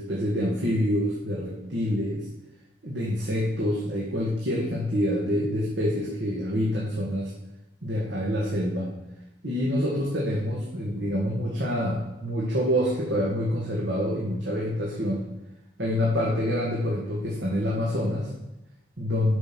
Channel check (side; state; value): both; normal; correlation 0.65